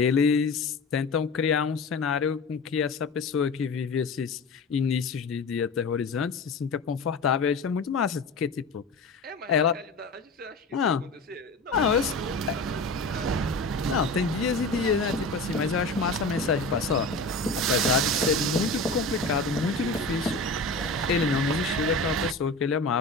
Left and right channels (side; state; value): right; quieter; 3.1 dB